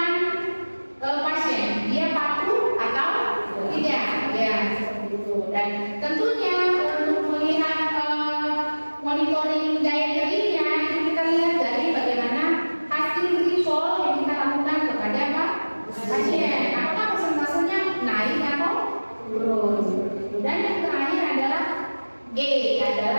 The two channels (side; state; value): both; inverted; correlation -1.00